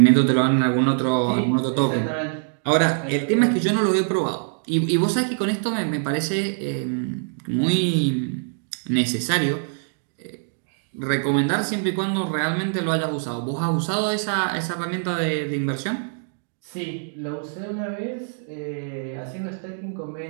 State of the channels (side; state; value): left; silent; digital silence